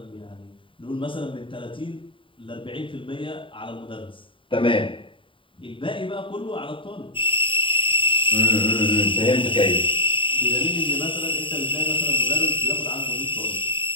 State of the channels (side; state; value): right; late; 0.25 ms